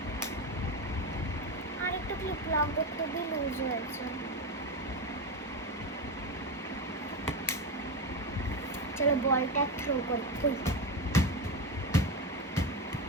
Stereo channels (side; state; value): both; normal; correlation 0.16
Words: আর একটু ক্লিপ লাগবে, খুবই লুজ হয়েছে। চলো বলটা থ্রো করি।